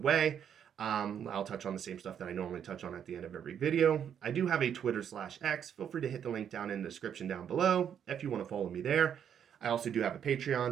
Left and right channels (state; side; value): quieter; left; 8.7 dB